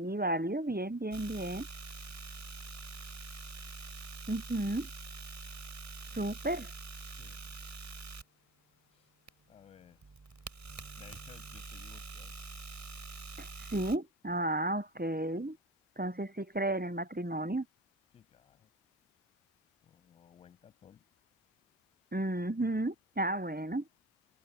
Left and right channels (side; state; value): both; normal; correlation 0.35